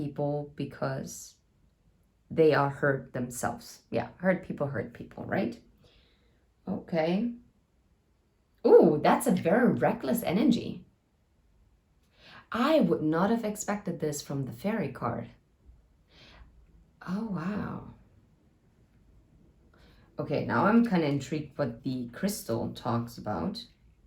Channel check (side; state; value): both; identical; correlation 1.00